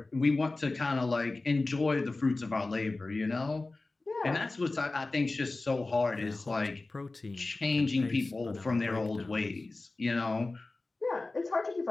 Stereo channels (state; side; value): quieter; right; 3.3 dB